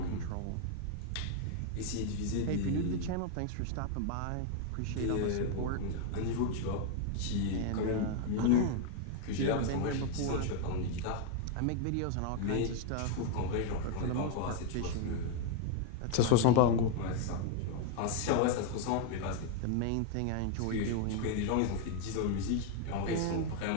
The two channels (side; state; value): both; different; correlation 0.00